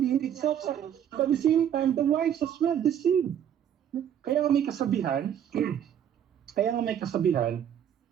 it's self-sacrifice. But at the same time, the wives as well, the same. Kaya nga may kasabihan,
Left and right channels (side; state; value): left; quieter; 9.5 dB